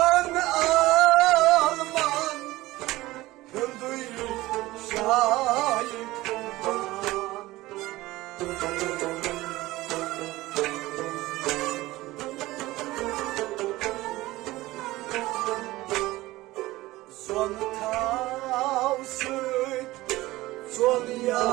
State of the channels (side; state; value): left; quieter; 18.3 dB